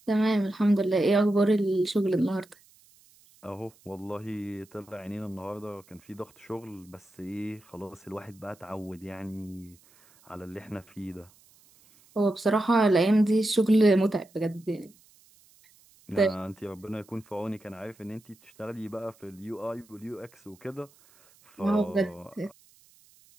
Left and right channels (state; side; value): noise; right; hiss, 29 dB below the sound